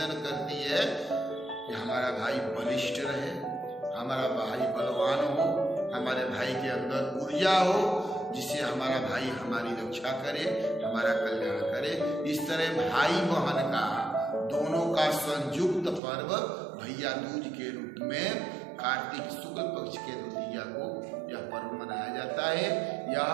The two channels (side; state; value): left; drops out; at 16.0 s